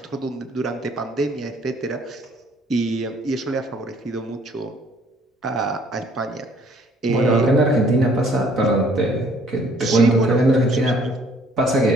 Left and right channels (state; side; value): normal; both; correlation 0.60